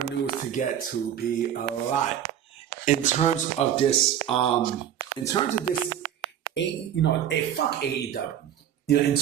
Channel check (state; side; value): quieter; left; 10.1 dB